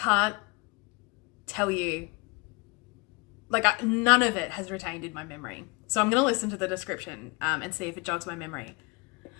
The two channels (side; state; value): right; quieter; 27.9 dB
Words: tell you, like none of it has retained in my memory. So I'm going to listen to the description and see if it jogs my memory.